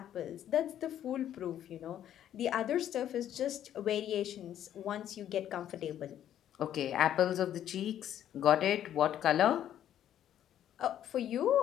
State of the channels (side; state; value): right; quieter; 10.9 dB